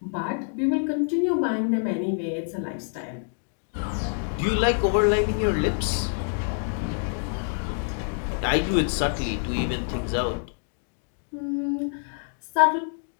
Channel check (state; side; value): silent; right; 61 dB below the other